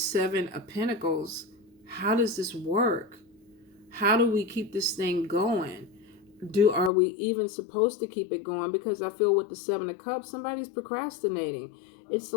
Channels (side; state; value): right; drops out; at 6.9 s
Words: of Pentacles, how does this work? How do we keep this thing going? Are we even supposed to keep it going? Because I feel with the Seven of Cups, somebody's procrastinating. It's